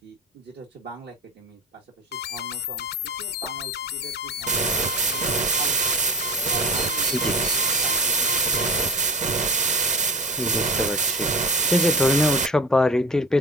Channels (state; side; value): normal; both; correlation 0.31